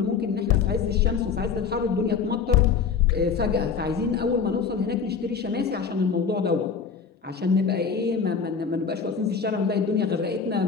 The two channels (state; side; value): quieter; right; 6.0 dB